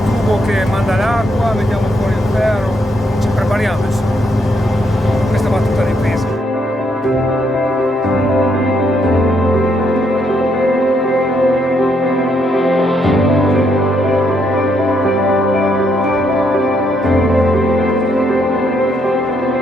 tubo che manda l'acqua, mettiamo fuori il ferro, ci prepariamo insomma. Questa va tutta di pesca.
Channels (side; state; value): both; normal; correlation 0.75